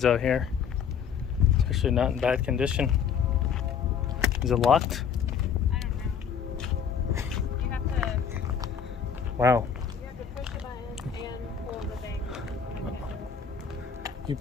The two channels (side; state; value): right; quieter; 7.3 dB